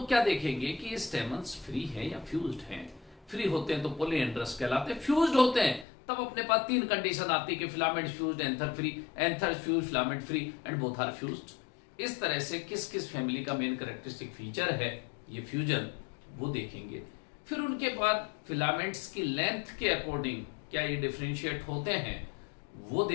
क्या देखेंगे कि ये स्टेमन्स फ्री हैं या फ्यूज्ड हैं। फ्री होते हैं तो पॉलीएंड्रस कहलाते हैं, फ्यूज्ड होते हैं तब अपने पास 3 कंडीशन आती है कि filament fused, anther free, anther fused, filament free and both are fused. इस तरह से किस किस फैमिली का मेन कैरेक्टरिस्टिक फीचर है ये फ्यूजन, वो देखेंगे। फिर उनके बाद फिलामेंट्स की लेंथ के अकॉर्डिंग क्या ये डिफरेंशिएट होते हैं वो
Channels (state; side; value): drops out; right; at 5.9 s